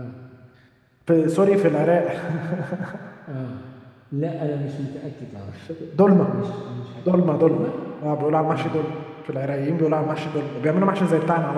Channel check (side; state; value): both; identical; correlation 1.00